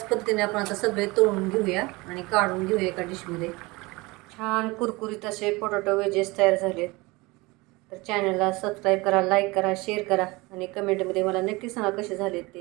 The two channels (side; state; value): left; quieter; 23.5 dB